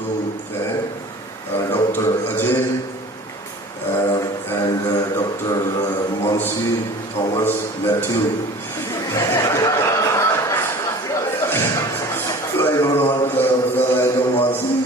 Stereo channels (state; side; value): normal; both; correlation 0.42